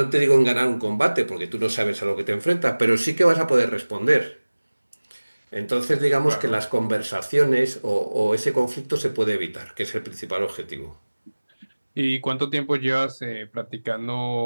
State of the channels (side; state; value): both; inverted; correlation -1.00